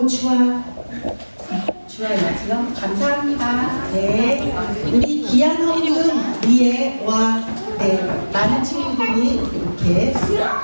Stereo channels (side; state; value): both; inverted; correlation -1.00